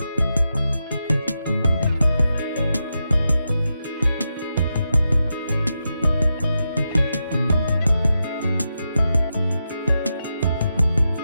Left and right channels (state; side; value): inverted; both; correlation -0.87